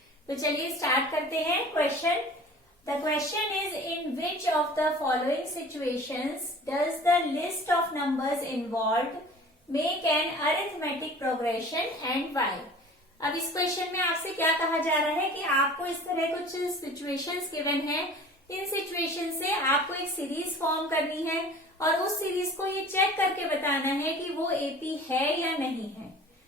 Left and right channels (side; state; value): both; normal; correlation 0.44